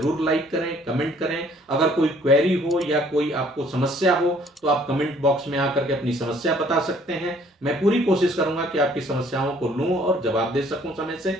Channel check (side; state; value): both; normal; correlation 0.59